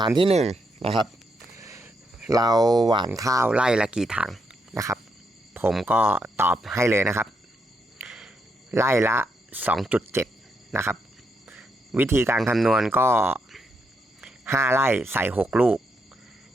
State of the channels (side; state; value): both; normal; correlation 0.79